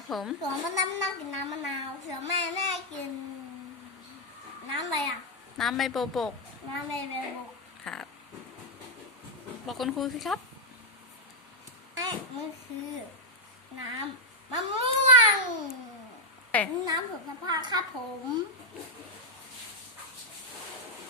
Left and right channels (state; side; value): normal; both; correlation -0.02